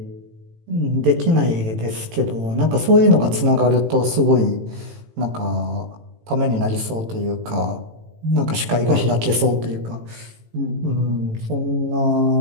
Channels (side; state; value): left; late; 18 ms